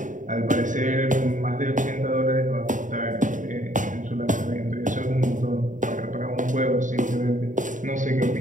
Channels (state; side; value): late; left; 0.37 ms